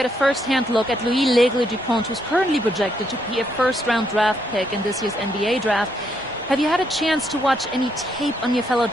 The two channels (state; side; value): normal; both; correlation 0.75